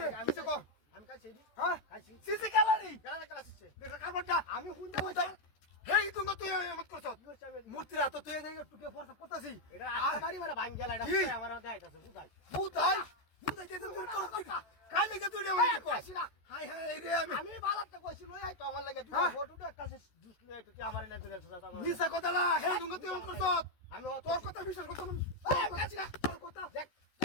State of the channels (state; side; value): late; right; 13 ms